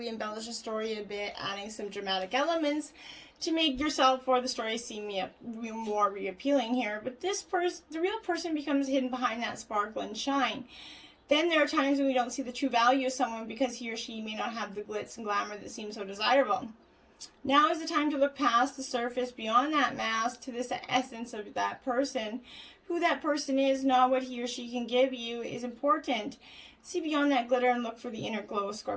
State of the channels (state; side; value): identical; both; correlation 1.00